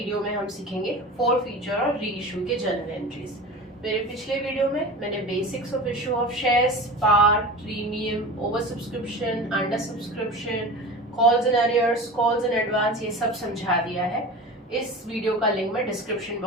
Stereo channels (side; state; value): both; normal; correlation 0.33